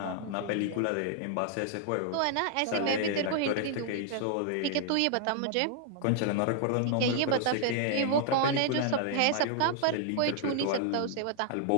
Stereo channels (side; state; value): both; different; correlation 0.00